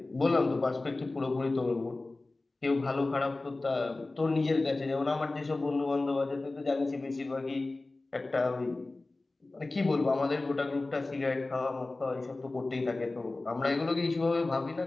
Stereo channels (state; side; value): quieter; right; 3.1 dB